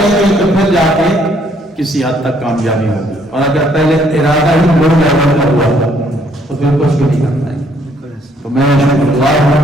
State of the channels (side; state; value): both; normal; correlation 0.67